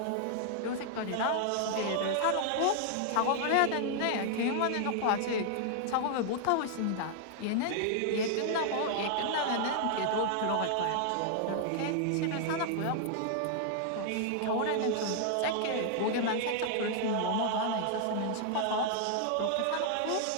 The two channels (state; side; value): different; both; correlation 0.00